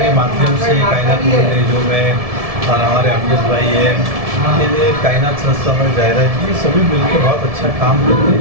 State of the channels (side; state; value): left; late; 1.7 ms